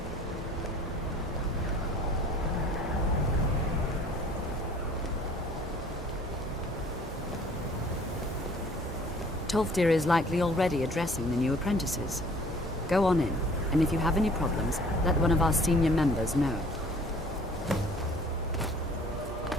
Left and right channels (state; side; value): normal; both; correlation 0.53